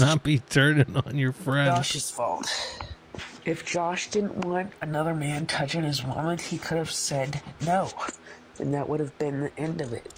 be turning on your friend. Josh's fault. If Josh didn't want another man touching his woman, he could have said no. And that would have been the end of it.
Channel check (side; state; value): both; identical; correlation 1.00